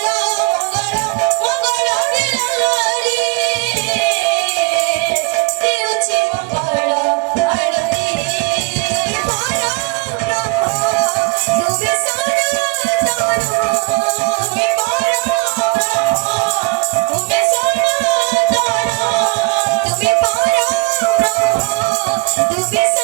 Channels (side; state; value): left; quieter; 36.1 dB